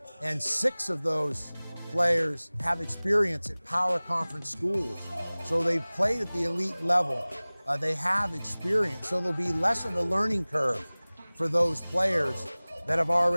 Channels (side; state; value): both; inverted; correlation -1.00